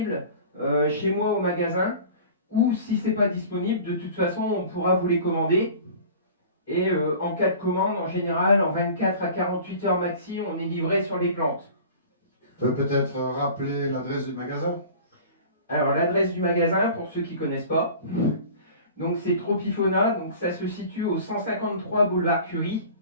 chez moi au magasin. Ou si ce n'est pas disponible, de toute façon, on pourra vous les commander. Et en cas de commande, en général, en 24 à 48 heures maxi, on est livré sur les plantes. Tu peux peut-être rappeler l'adresse du magasin? Alors l'adresse du magasin, pour ceux qui ne connaissent pas, donc c'est Tropifona, donc ça se situe au 153 boulevard Curie,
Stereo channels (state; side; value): inverted; both; correlation -0.41